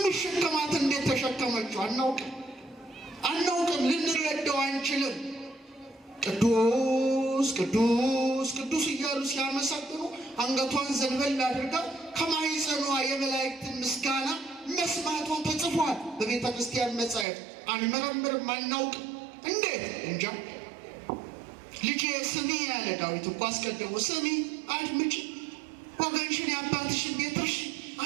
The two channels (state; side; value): drops out; left; at 17.2 s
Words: እንዴት ተሸከመችው? አናውቅም፣ ልንረዳው አንችልም። ቅዱስ ቅዱስ ቅዱስ እያሉ ሲያመሰግኑ አንገቷን ዘንበል አድርጋ ከማኅፀኗ የመላእክትን ምስጋና መስማቷ ተጽፏል በቤተ ክርስቲያን መጻሕፍት። አንመረምርም፣ አናውቅም። እንዴት? እንጃ። ልጄ ስሚ ያለ ዳዊት እኮ አስቀድሞ ስሚ፣ አድምጪ፣ ወገንሽን የአባትሽን ቤት እርሺ፣